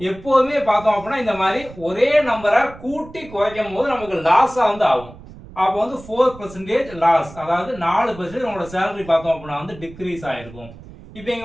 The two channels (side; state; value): right; noise; rumble, 18 dB below the sound